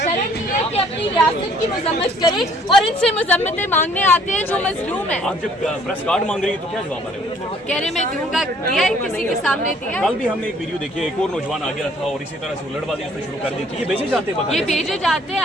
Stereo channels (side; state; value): both; normal; correlation 0.60